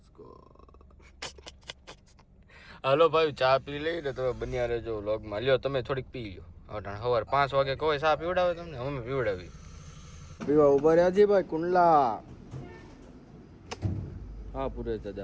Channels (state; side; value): identical; both; correlation 1.00